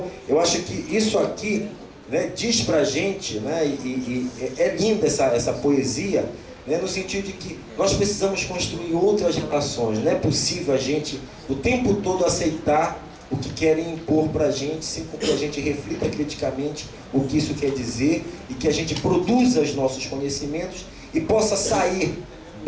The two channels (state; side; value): identical; both; correlation 1.00